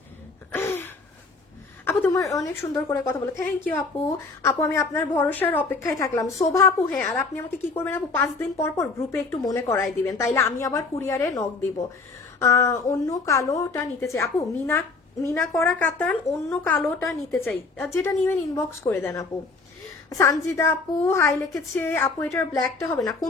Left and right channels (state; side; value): quieter; right; 4.0 dB